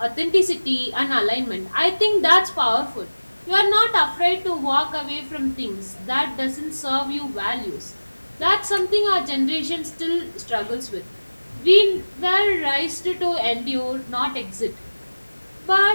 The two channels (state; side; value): inverted; both; correlation -1.00